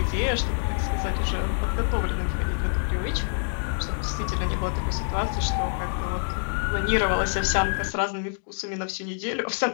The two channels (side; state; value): right; silent; digital silence